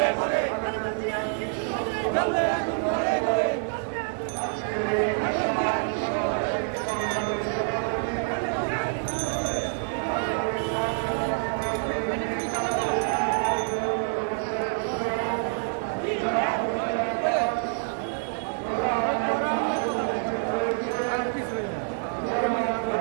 ঘরে, জ্বলবে আগুন ঘরে ঘরে।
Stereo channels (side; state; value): left; silent; 60 dB below the other